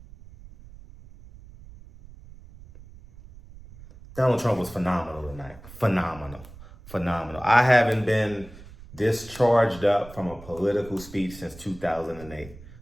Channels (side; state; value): right; noise; rumble, 19 dB below the sound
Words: Donald Trump was phenomenal tonight. Phenomenal. I haven't been this charged up from a political speech since 2008,